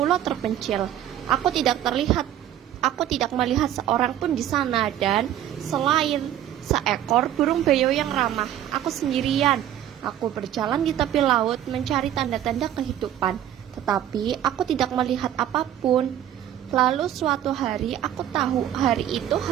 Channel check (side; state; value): left; quieter; 11.4 dB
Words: terpencil. Aku tidak melihat seorang pun di sana, dan selain seekor burung beo yang ramah, aku sendirian. Aku berjalan di tepi laut mencari tanda-tanda kehidupan, tetapi aku tidak melihat apapun. Lalu suatu hari aku tahu hari itu